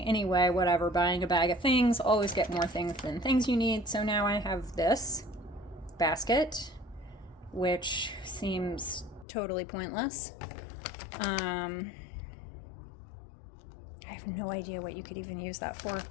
Anyway, whatever, buying a bag of things, always get more things than things you need. So now I have this basket, which seems totally pointless. I have no idea what you could even use that for.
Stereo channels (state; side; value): drops out; right; at 9.2 s